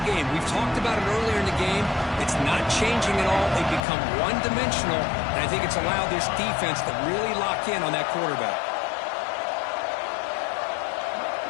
game. We've talked about it earlier in the game. It's not changing at all. They've become one-dimensional, and I think it's allowed this defense to really lock in on that quarterback.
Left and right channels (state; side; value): drops out; right; at 3.8 s